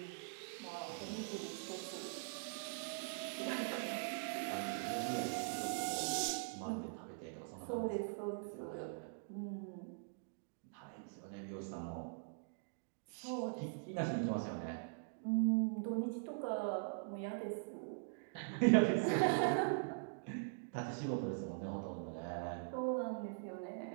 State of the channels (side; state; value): left; silent; digital silence